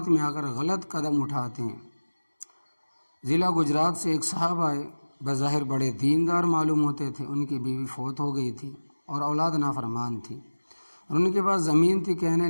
میں آ کر غلط قدم اٹھاتے ہیں۔ ضلع گجرات سے ایک صاحب آئے، بظاہر بڑے دیندار معلوم ہوتے تھے، ان کی بیوی فوت ہو گئی تھی اور اولاد نافرمان تھی، اور ان کے پاس زمین تھی۔ کہنے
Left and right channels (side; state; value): both; inverted; correlation -1.00